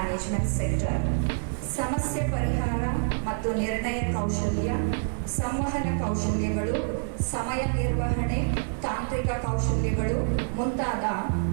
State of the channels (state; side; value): silent; left; 60 dB below the other